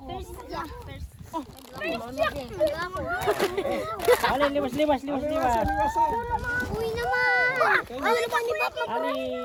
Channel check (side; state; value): both; identical; correlation 1.00